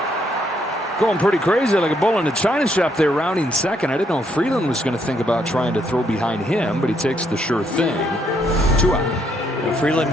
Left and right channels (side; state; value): both; normal; correlation 0.73